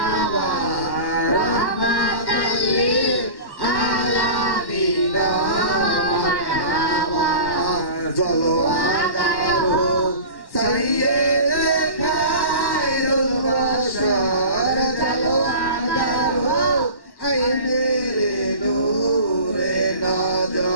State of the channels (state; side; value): late; right; 1.1 ms